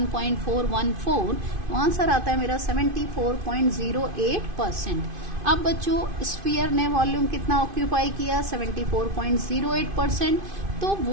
तो आंसर आता है मेरा 74.08%। अब बच्चों स्फीयर ने वॉल्यूम कितना ऑक्यूपाई किया? 74.08%। तो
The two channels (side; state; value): left; late; 2.5 ms